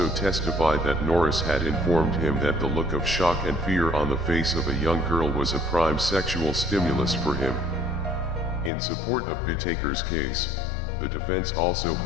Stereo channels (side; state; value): right; drops out; at 8.7 s